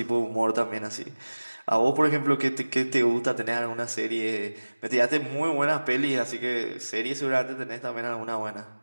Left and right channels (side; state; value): both; inverted; correlation -1.00